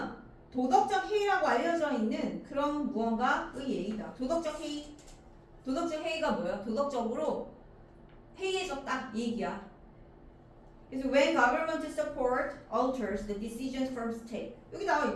도덕적 해이라고 알려져 있는 그런 무언가의 얘기다. 도덕적 해이. 도덕적 해이가 뭐야? 도덕적으로 해이해졌다 이 얘기야. 그래서 when government support alters the decisions from state. 여기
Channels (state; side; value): identical; both; correlation 1.00